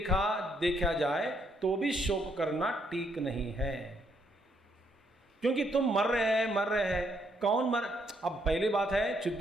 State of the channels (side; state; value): both; normal; correlation 0.72